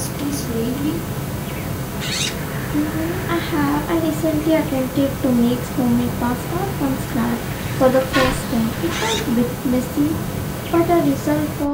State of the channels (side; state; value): both; identical; correlation 1.00